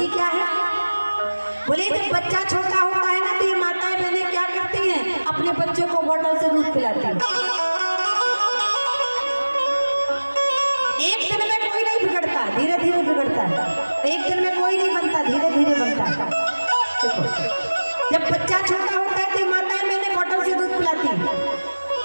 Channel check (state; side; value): inverted; both; correlation -1.00